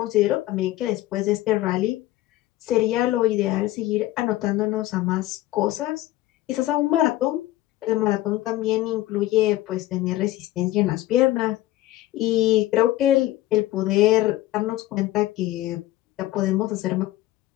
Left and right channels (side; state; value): right; quieter; 15.9 dB